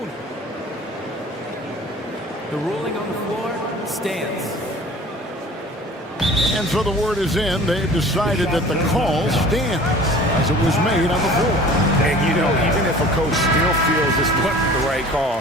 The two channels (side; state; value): both; normal; correlation 0.45